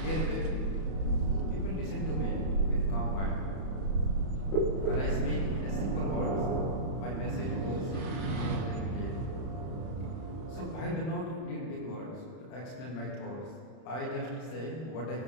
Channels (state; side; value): late; right; 31 ms